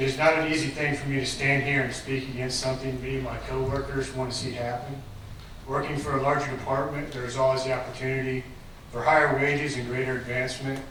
is not an easy thing for me to stand here and speak against something me and my coworkers want to see happen. Working for a larger department, there is always the opportunity for higher wages and greater advancement,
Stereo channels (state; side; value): identical; both; correlation 1.00